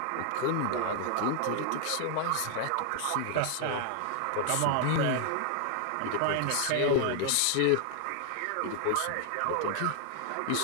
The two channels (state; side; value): different; both; correlation 0.00